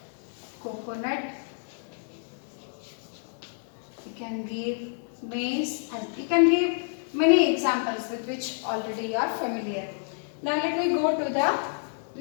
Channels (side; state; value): right; silent; 59 dB below the other